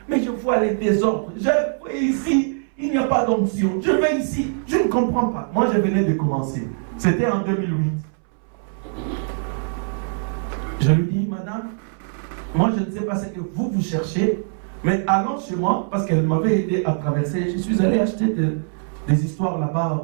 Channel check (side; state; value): left; silent; 64 dB below the other